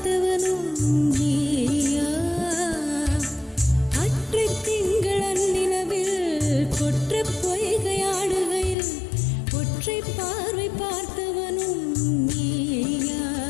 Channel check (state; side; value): drops out; right; at 8.8 s